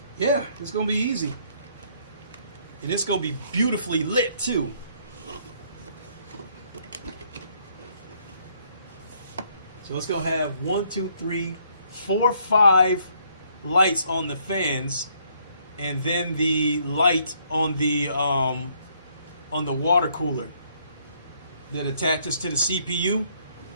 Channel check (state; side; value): inverted; both; correlation -0.67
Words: Yeah, it's gonna be easy. And it's gonna be beautifully lit too. So it's gonna have 1, 2, 3, 4, 5 lights on the fans, and then the light on the water cooler that attaches to the CPU.